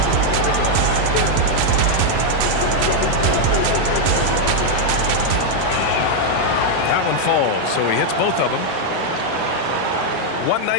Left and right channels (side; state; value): both; different; correlation 0.00